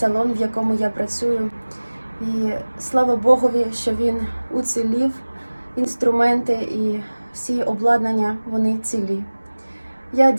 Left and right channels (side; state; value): both; inverted; correlation -1.00